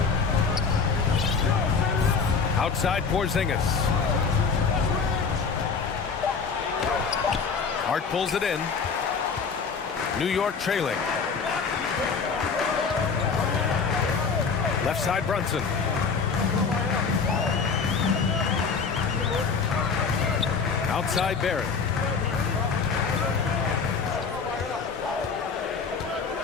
Outside Porzingis. Hart pulls it in. New York trailing. Left side Brunson. Outside Barrett.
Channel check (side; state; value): right; quieter; 5.4 dB